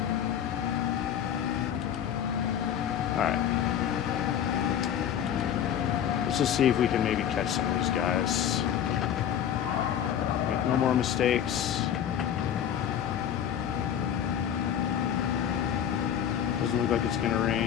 Let's just see if we can maybe catch some of these guys. Make no more mistakes. Doesn't look like it's gonna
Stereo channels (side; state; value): right; quieter; 9.5 dB